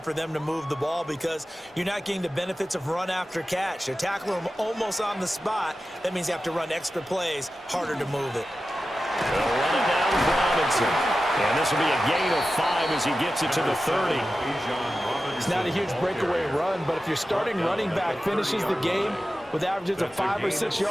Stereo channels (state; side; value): normal; both; correlation 0.93